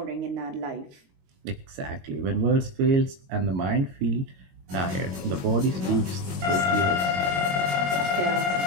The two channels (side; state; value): left; late; 21 ms